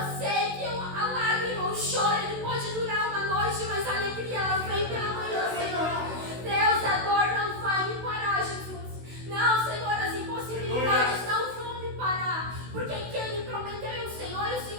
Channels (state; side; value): late; left; 16 ms